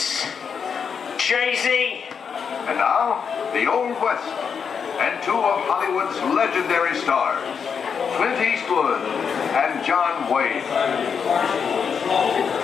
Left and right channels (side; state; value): right; quieter; 6.5 dB